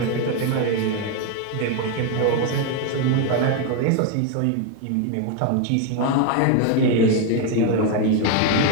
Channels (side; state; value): both; different; correlation 0.01